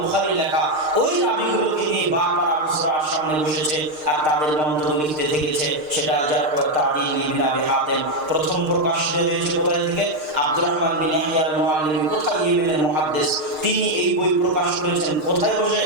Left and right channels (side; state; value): left; late; 6.5 ms